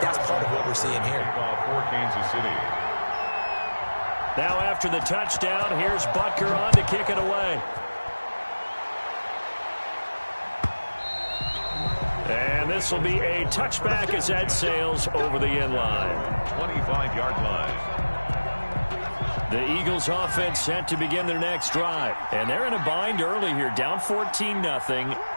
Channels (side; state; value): both; inverted; correlation -1.00